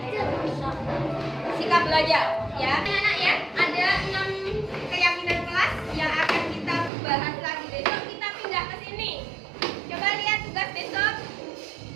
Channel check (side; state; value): left; drops out; at 6.9 s